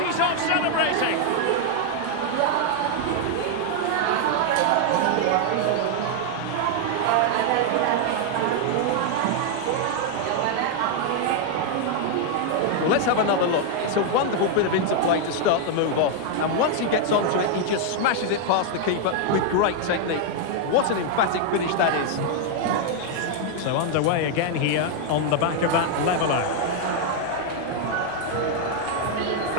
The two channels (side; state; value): both; different; correlation 0.00